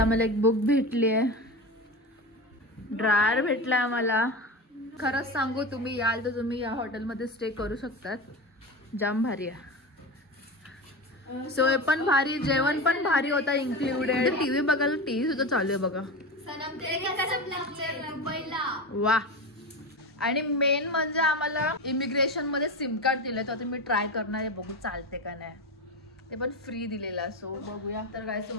आम्हाला एक बुक भेटली आहे, ड्रायर भेटला आम्हाला. खरंच सांगू, तुम्ही याल तर तुम्ही या हॉटेलमध्ये स्टे करू शकतात. जाम भारी आहे. सोय पण भारी, जेवण पण भारी होता इन्क्लुडेड. टीव्ही बघायला टीव्ही सुद्धा चालू आहे बघा. वा. आणि मेन म्हणजे आम्हाला इमिग्रेशन मध्ये सिम कार्ड दिलंय, तर आता मी ट्राय करणार आहे, बघू चालते का नाही. ते पण फ्री दिलेला. सो बघूया. तर काय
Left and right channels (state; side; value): normal; both; correlation 0.24